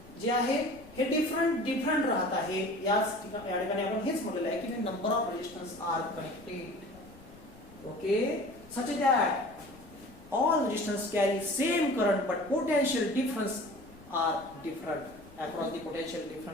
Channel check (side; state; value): left; noise; rumble, 23 dB below the sound